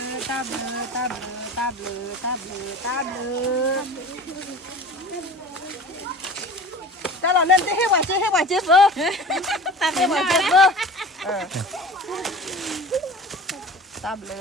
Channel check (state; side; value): normal; both; correlation 0.39